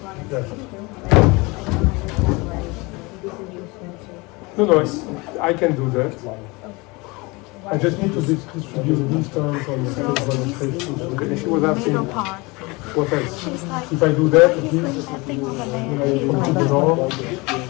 No, I can do that. I just need to distribute these terms on the demonstration. If she was asking what else, if I do that, at least, I complete the norm.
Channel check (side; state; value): right; quieter; 25.4 dB